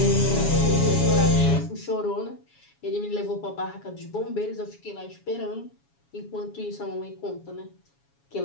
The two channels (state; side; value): late; right; 7.2 ms